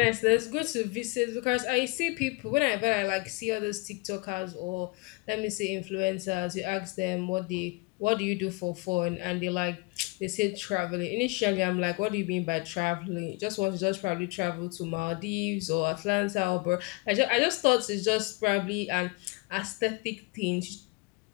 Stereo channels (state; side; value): quieter; right; 26.6 dB